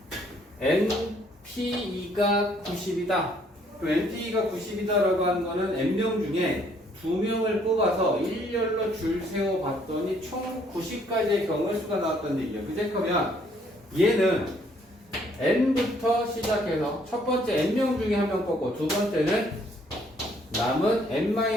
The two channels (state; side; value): normal; both; correlation 0.65